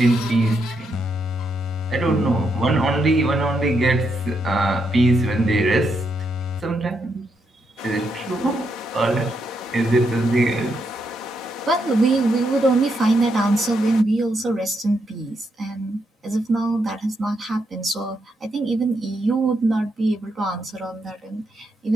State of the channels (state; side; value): normal; both; correlation 0.80